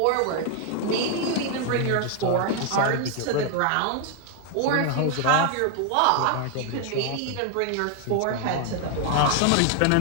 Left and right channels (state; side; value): different; both; correlation 0.00